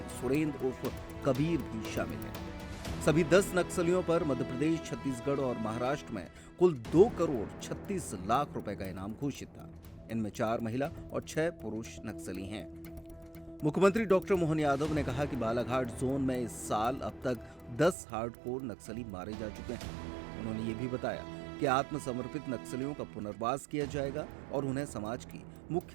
सुरेंद्र उर्फ कबीर भी शामिल है। सभी 10 नक्सलियों पर मध्य प्रदेश, छत्तीसगढ़ और महाराष्ट्र में कुल 2 करोड़ 36 लाख रुपए का इनाम घोषित था। इनमें 4 महिला और 6 पुरुष नक्सली हैं। मुख्यमंत्री डॉक्टर मोहन यादव ने कहा कि बालाघाट जोन में इस साल अब तक 10 हार्डकोर नक्सली मारे जा चुके हैं। उन्होंने ये भी बताया कि आत्मसमर्पित नक्सलियों का पुनर्वास किया जाएगा और उन्हें समाज की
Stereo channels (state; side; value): drops out; left; at 17.9 s